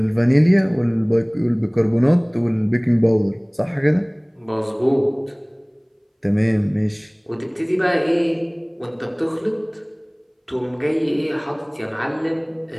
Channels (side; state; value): both; identical; correlation 1.00